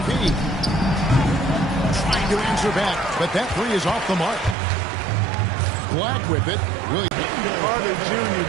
Trying to answer back, but that 3 is off the mark. Black with it. Really. Carter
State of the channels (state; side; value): drops out; left; at 4.5 s